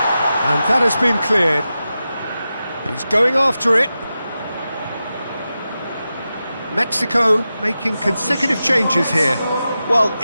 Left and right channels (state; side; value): inverted; both; correlation -0.92